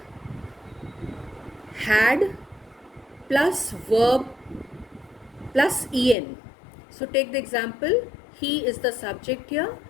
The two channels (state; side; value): drops out; right; at 6.2 s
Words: had plus verb plus en. So take the example, he is the subject here,